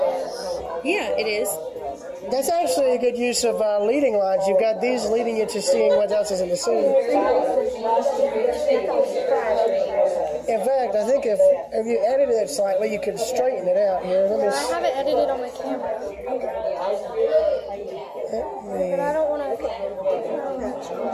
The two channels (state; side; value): identical; both; correlation 1.00